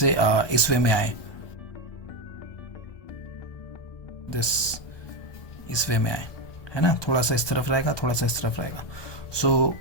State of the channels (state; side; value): late; right; 1.2 ms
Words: इस वे में आए, दिस इस वे में आए, है ना? थोड़ा सा इस तरफ रहेगा, थोड़ा सा इस तरफ रहेगा. सो